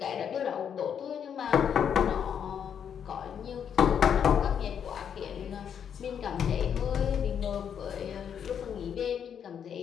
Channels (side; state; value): right; quieter; 8.2 dB